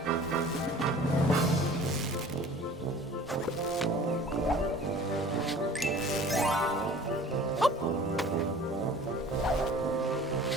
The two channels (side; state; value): both; normal; correlation 0.46